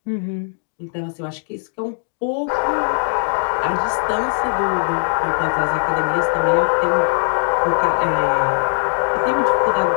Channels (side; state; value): right; silent; digital silence